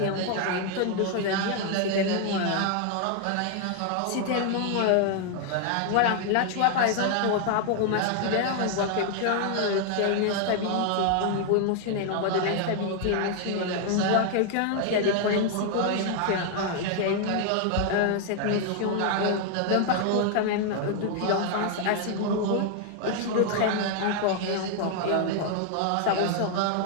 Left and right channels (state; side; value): different; both; correlation 0.00